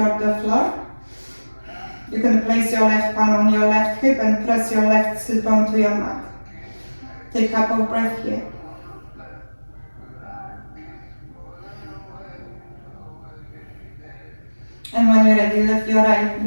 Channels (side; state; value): both; inverted; correlation -1.00